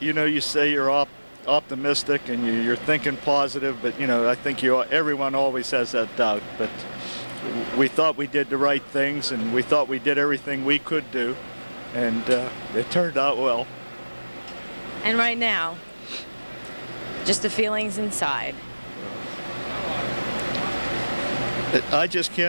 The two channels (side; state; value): both; inverted; correlation -1.00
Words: you say you're optimistic and you're thinking positive, but I think everyone always has that doubt. But we thought we did the right things, and we thought we did everything we could do, and it turned out well. And right now, just the feelings inside. I just